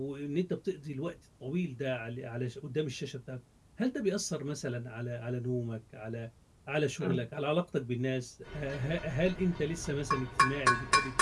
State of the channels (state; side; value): identical; both; correlation 1.00